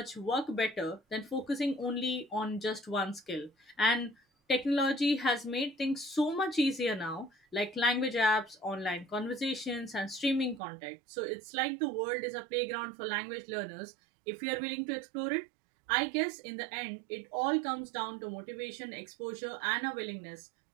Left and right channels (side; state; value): left; drops out; at 10.6 s